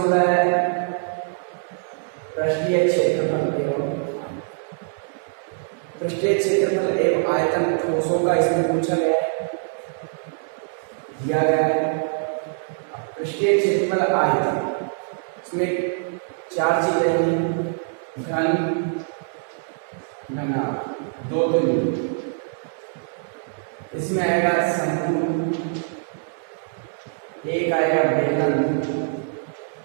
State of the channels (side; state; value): left; silent; digital silence